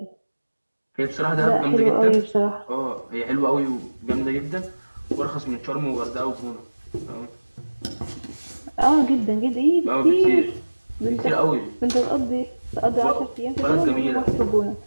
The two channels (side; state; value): both; inverted; correlation -1.00